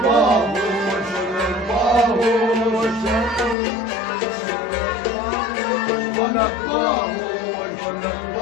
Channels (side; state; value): right; drops out; at 3.6 s